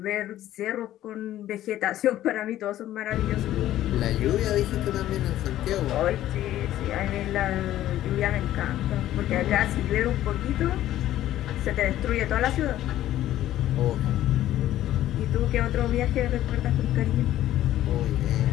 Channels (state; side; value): quieter; right; 13.3 dB